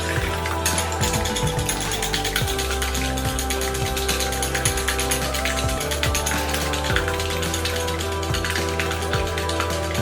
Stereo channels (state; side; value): identical; both; correlation 1.00